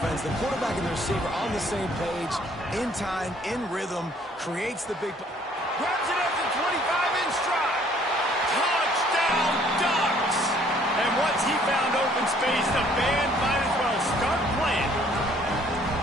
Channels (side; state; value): both; normal; correlation 0.60